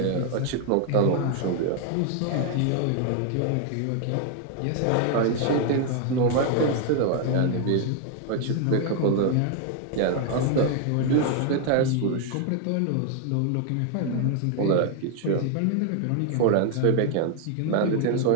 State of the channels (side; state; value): both; different; correlation 0.00